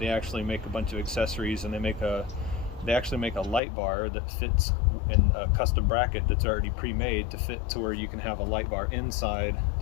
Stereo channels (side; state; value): right; drops out; at 3.6 s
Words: actually make a bunch of accessories, and they actually make a light bar that fits in a custom bracket that's already pre-made to fit to where you can have a light bar inside